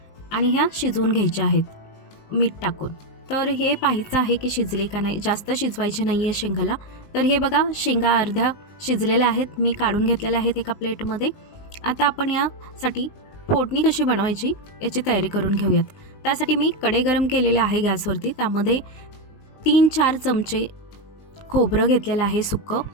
आणि ह्या शिजवून घ्यायच्या आहेत मीठ टाकून. तर हे पाहायचं आहे की शिजले का नाही. जास्त शिजवायचे नाही आहे शेंगाला. तर हे बघा, शेंगा अर्ध्या शिजलेल्या आहेत, मी काढून घेतलेल्या आहेत एका प्लेटमध्ये. आता आपण यासाठी फोडणी कशी बनवायची याची तयारी करून घेऊयात. त्यासाठी मी कढई गरम केलेलं आहे गॅसवरती. त्यामध्ये 3-4 चमचे खोबरं घेतलेलं आहे सुक्कं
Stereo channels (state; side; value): late; right; 19 ms